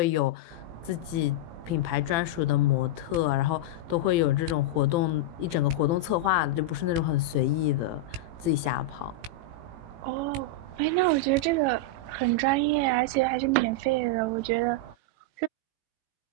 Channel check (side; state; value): left; late; 18 ms